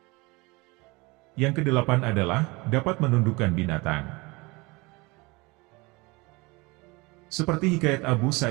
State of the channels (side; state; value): left; quieter; 24.8 dB